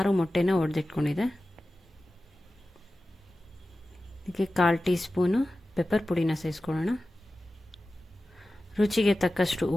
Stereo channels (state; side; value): normal; both; correlation 0.95